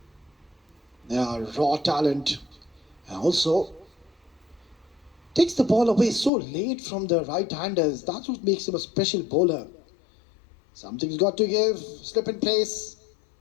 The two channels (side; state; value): right; drops out; at 6.3 s